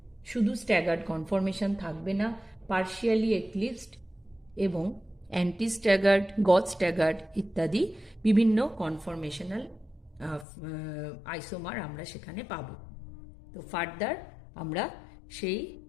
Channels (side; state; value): right; drops out; at 10.5 s